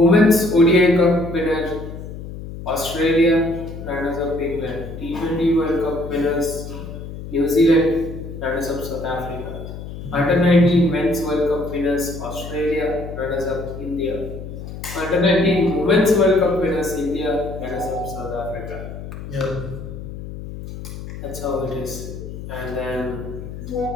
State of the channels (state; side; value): noise; left; hum, 10 dB below the sound